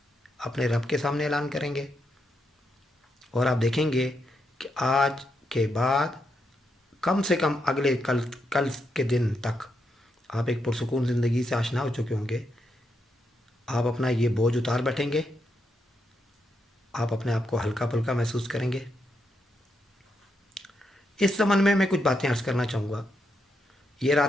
اپنے رب کے سامنے اعلان کریں گے، اور آپ دیکھیں گے کہ آج کے بعد کم سے کم اگلے کل کے دن تک آپ ایک پرسکون زندگی سے آشنا ہو چکے ہوں گے۔ آپ اپنا یہ بوجھ اتار بیٹھیں گے، آپ اپنے آپ کو ہلکا پھلکا محسوس کریں گے۔ اس زمن میں کچھ باتیں عرض کرنا چاہوں گا۔ یہ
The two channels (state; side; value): normal; both; correlation 0.81